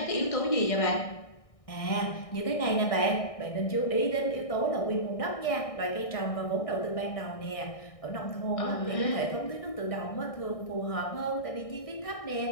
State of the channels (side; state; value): right; late; 1.6 ms